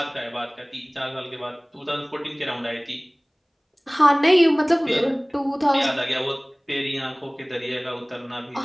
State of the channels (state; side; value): identical; both; correlation 1.00